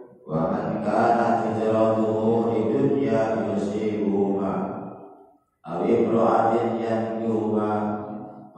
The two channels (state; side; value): identical; both; correlation 1.00